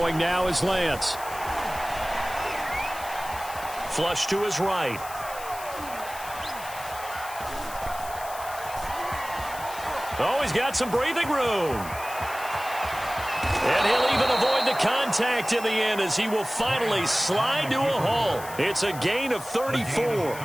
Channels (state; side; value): noise; left; hiss, 14 dB below the sound